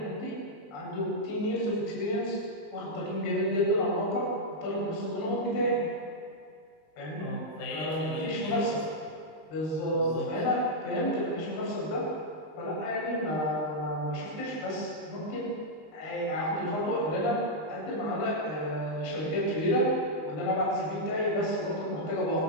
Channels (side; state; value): right; late; 19 ms